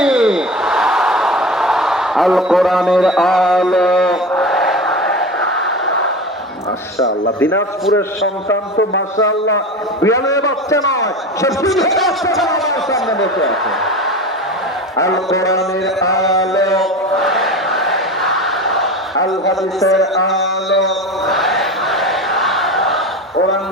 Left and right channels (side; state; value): both; normal; correlation 0.30